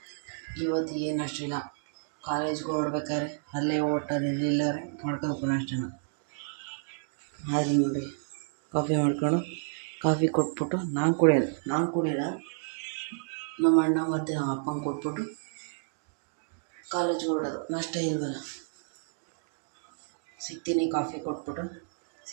ಇವತ್ತು ಏನು ಅಷ್ಟಿಲ್ಲ. ಕಾಲೇಜ್ಗೆ ಹೊರಡ್ಬೇಕಾದ್ರೆ ಅಲ್ಲೇ ಹೋಟೆಲ್ ಎಲ್ಲಾರೆ ಮಾಡ್ಕೋಬೇಕು ನಾಷ್ಟನ. ಆದರೆ ನೋಡಿ, ಕಾಫಿ ಮಾಡ್ಕೊಂಡು ಕಾಫಿ ಕೊಟ್ಬಿಟ್ಟು ನಾನು ಕುಡಿಯಲ್ಲ, ನಮ್ಮ ಅಣ್ಣ ಮತ್ತು ನಮ್ಮ ಅಪ್ಪಂಗೆ ಕೊಟ್ಬಿಟ್ಟು ಕಾಲೇಜ್ಗೆ ಹೊರಡೋದು. ನಾಷ್ಟ ಇಲ್ವಲ್ಲ, ಸಿಗ್ತೀನಿ. ಕಾಫಿ ಕೊಟ್ಬಿಟ್ಟು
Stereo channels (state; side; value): silent; left; digital silence